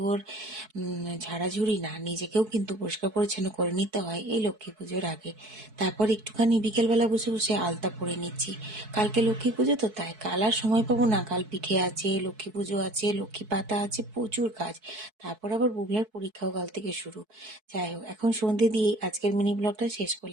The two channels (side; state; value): left; late; 4.6 ms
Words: ঝাড়াঝুড়ি না, নিজেকেও কিন্তু পরিষ্কার পরিচ্ছন্ন করে নিতে হয় এই লক্ষ্মী পুজোর আগে। তারপর একটুখানি বিকেলবেলা বসে বসে আলতা পরে নিচ্ছি। কালকে লক্ষ্মী পুজো তো, তাই কাল আর সময় পাবো না। কাল পিঠে আছে, লক্ষ্মী পুজো আছে, লক্ষ্মী পাতা আছে, প্রচুর কাজ। তারপর আবার বুবলার পরীক্ষাও কাল থেকে শুরু। যাই হোক, এখন সন্ধে দিয়ে আজকের মিনি ব্লগটা শেষ